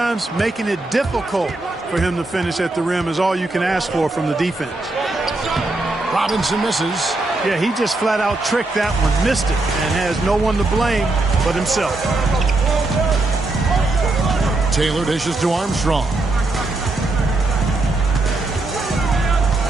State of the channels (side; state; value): left; quieter; 3.0 dB